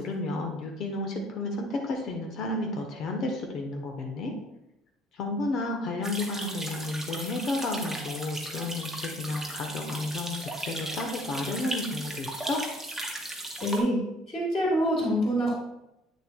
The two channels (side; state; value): both; normal; correlation 0.57